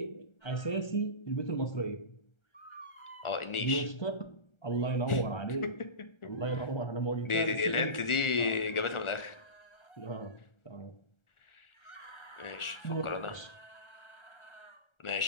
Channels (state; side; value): late; right; 1.4 ms